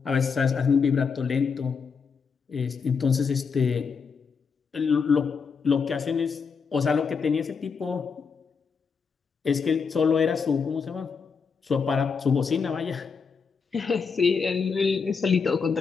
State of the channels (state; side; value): quieter; right; 5.6 dB